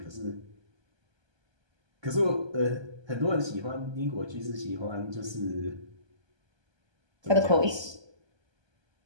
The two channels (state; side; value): late; left; 1.2 ms